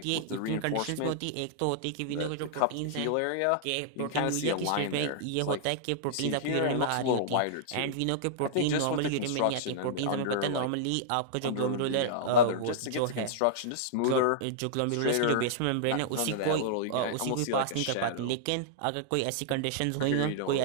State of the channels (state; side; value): different; both; correlation -0.02